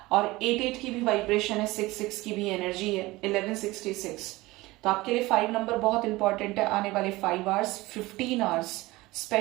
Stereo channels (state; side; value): quieter; left; 20.2 dB